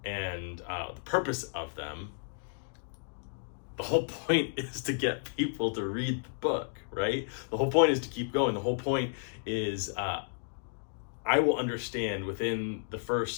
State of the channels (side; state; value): right; silent; digital silence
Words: and the purpose of them, the whole point is to get people to read the book, right? The whole point is to keep going. The whole point is I will understand within the